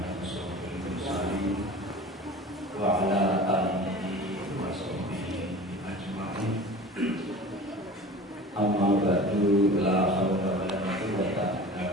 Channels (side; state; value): both; normal; correlation 0.38